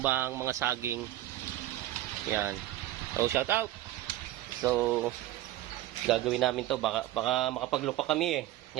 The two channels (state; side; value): quieter; left; 14.9 dB